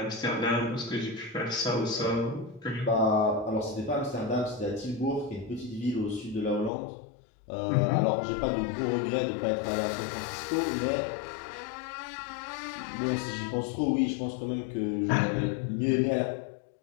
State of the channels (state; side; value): drops out; right; at 6.7 s